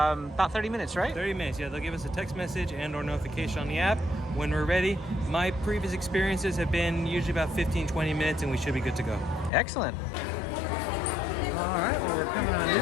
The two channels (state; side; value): drops out; right; at 9.5 s